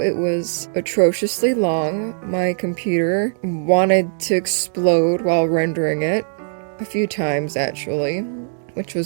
was atrociously long. My computer wanted to explode while rendering it. A few times, actually. Which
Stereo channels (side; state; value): left; silent; digital silence